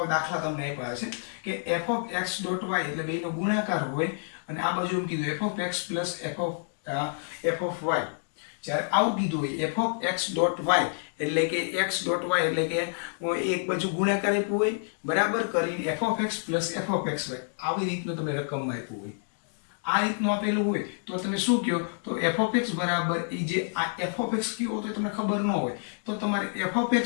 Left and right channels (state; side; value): silent; right; digital silence